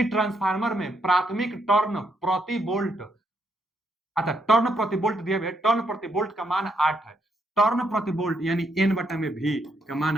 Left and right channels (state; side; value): normal; both; correlation 0.76